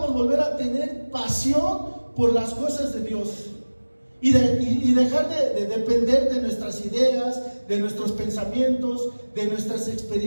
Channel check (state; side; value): inverted; both; correlation -1.00